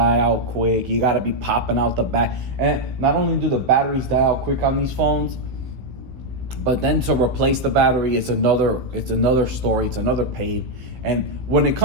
out quick. You gotta be popping out the back. And not only do the batteries die out quick on these phones, but then to replace the battery, it's another story. It's another pain. And when it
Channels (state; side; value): late; left; 16 ms